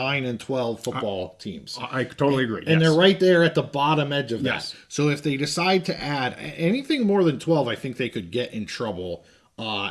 and 12 football teams. I totally agree. And they're right there at the bottom edge of that. Yes. So if they decide to add anything more than 12, I think they could get in trouble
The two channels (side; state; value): both; identical; correlation 1.00